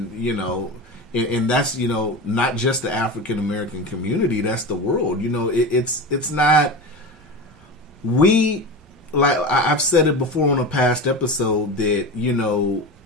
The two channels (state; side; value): normal; both; correlation 0.26